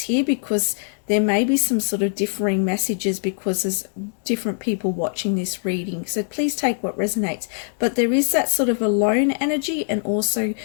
here, because there may be some sort of differing messages because there's different people watching this reading. So please take what resonates. But there is that sort of alone energy, and also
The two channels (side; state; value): right; silent; 62 dB below the other